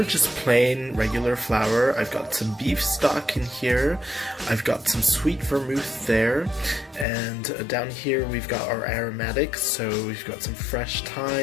just plain regular flour. I've got some beef stock in here. I've got some sweet vermouth there, and down here we've got our aromatics. So we've got some fresh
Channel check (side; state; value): right; drops out; at 7.1 s